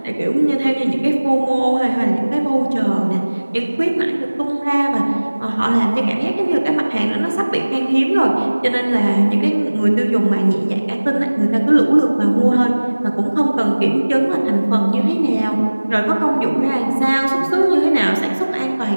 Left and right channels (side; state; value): both; inverted; correlation -1.00